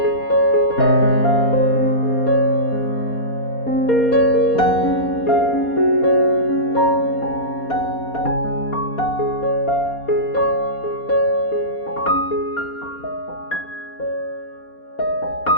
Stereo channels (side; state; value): right; late; 4.2 ms